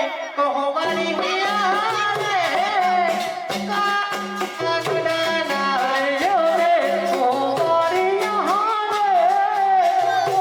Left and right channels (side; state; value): both; identical; correlation 1.00